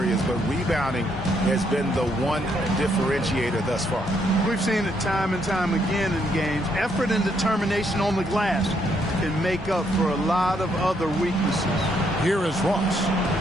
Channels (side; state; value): both; normal; correlation 0.73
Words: but rebounding has been the one differentiator thus far. We've seen it time and time again in games. Effort and determination on the glass can make up for a lot of other weaknesses. Here is Ross.